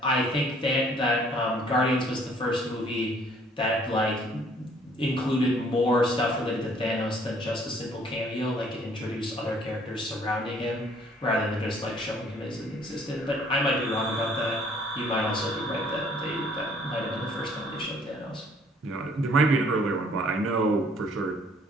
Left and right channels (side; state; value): both; normal; correlation 0.59